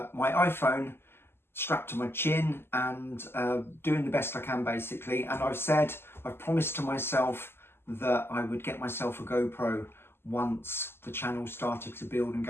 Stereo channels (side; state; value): right; late; 0.11 ms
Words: iPhone strapped to my chin and doing the best I can basically. And I've promised to myself that I would get myself a GoPro once the channel started to build and